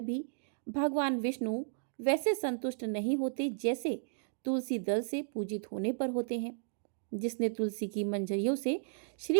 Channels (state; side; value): silent; left; digital silence